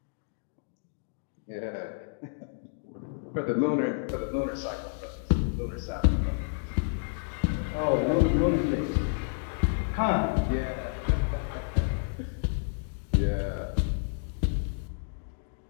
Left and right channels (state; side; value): silent; right; digital silence